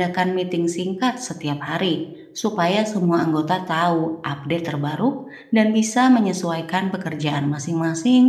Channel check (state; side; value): identical; both; correlation 1.00